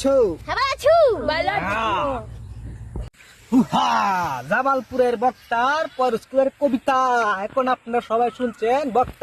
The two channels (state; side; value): identical; both; correlation 1.00